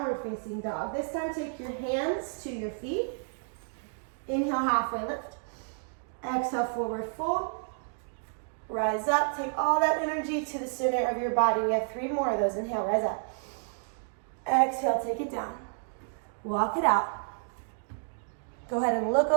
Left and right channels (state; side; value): silent; left; digital silence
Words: facing dog. This time take your hands to your feet. Inhale, halfway lift. Exhale, forward fold. Rise up. Take all that energy to the center of your body. We have 3 more of those. Inhale, rise up. Exhale, take it down. Walk it out. Go ahead and look